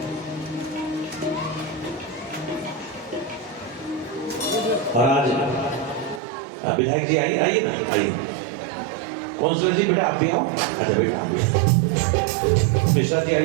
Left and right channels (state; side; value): drops out; left; at 6.2 s